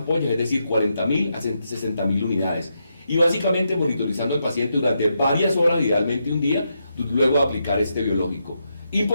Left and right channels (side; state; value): both; inverted; correlation -0.83